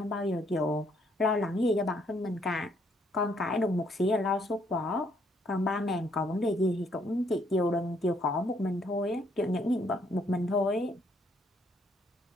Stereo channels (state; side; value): normal; both; correlation 0.69